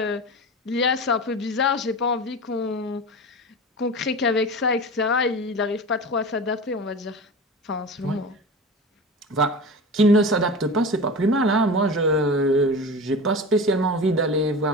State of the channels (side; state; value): both; normal; correlation 0.30